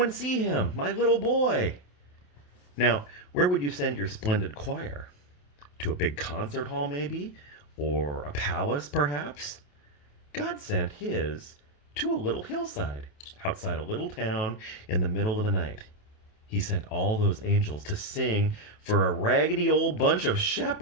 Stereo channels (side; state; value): right; late; 28 ms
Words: see him, my little boy. Now, where would you send your splendid choir? To a big concert hall, maybe? Or a palace, perhaps? God sent his to a little hillside outside a little town in the middle of the night. He sent all those angels to sing for a raggedy old bunch of